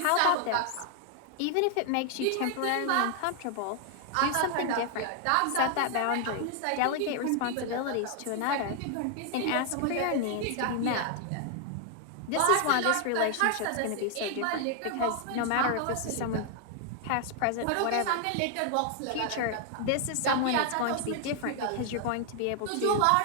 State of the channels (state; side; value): different; both; correlation 0.00